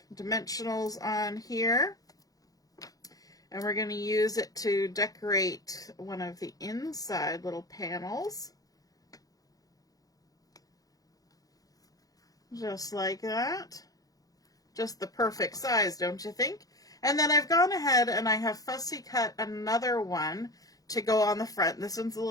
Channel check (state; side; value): late; right; 0.17 ms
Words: dimensionals on here. And we're going to use it to decorate one of the inside little panels. Just like that. just the perfect size, don't you think? And then I've gone ahead and I have fussy cut another one to go on the front. This one's a